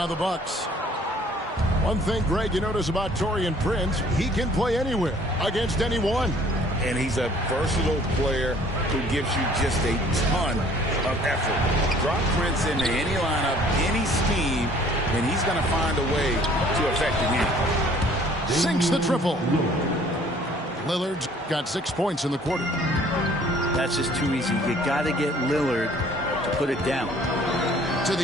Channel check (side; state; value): both; normal; correlation 0.56